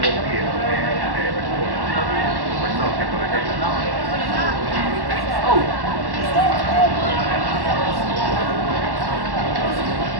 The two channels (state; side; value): late; left; 1.1 ms